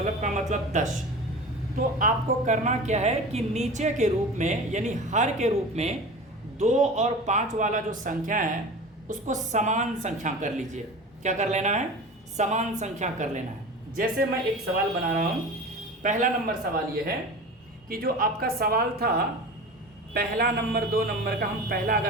का मतलब 10। तो आपको करना क्या है कि नीचे के रूप में यानी हर के रूप में 2 और 5 वाला जो संख्या है उसको समान संख्या कर लीजिए। क्या कर लेना है? समान संख्या कर लेना है। जैसे मैं एक सवाल बना रहा हूँ। पहला नंबर सवाल ये है कि जो आपका सवाल था पहला नंबर 2 नंबर का, हम पहला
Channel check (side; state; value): both; normal; correlation 0.34